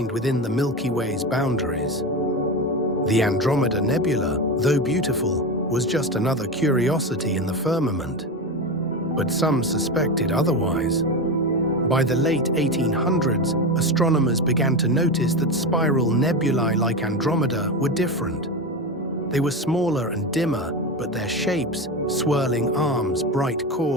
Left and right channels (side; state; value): both; normal; correlation 0.20